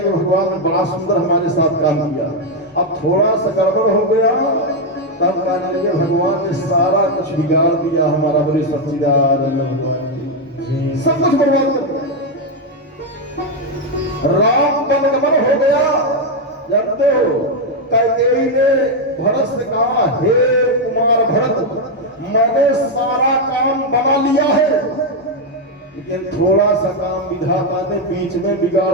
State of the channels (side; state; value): both; normal; correlation 0.03